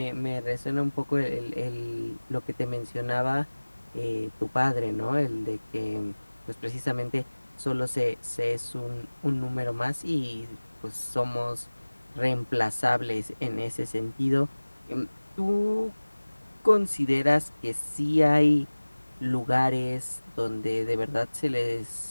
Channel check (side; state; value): both; inverted; correlation -1.00